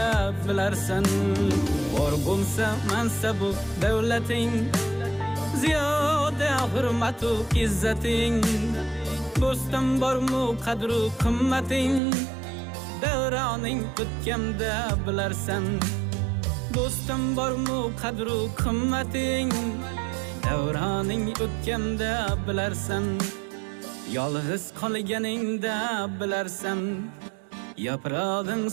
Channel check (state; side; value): drops out; left; at 12.0 s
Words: bilarsan. Bor bo'lsa mansabu davlating, ziyoda hurmatu izzating, do'stim bormu qadru qimmating, davroning o'tganda bilarsan. Do'stim bormu qadru qimmating, davroning o'tganda bilarsan. Yolg'iz qolganingda bilarsan, yaprog'ing